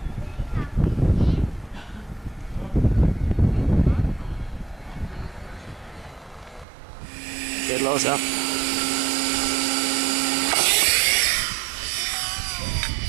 Geht los, ja.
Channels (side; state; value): left; drops out; at 6.7 s